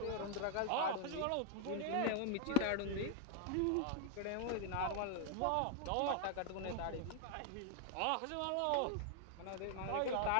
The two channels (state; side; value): different; both; correlation 0.00